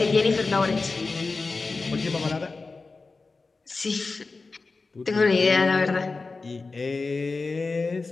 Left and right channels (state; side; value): quieter; right; 3.9 dB